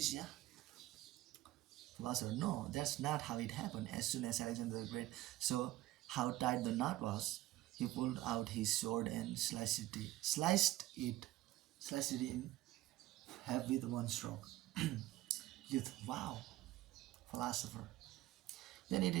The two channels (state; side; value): quieter; left; 16.0 dB